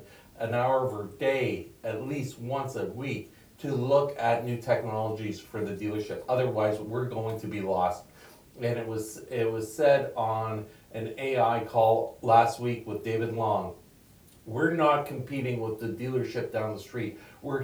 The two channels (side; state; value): both; identical; correlation 1.00